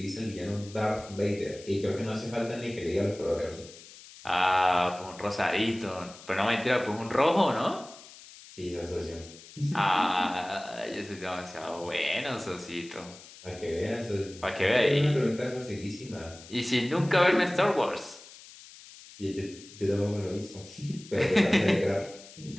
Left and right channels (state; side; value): noise; left; hiss, 19 dB below the sound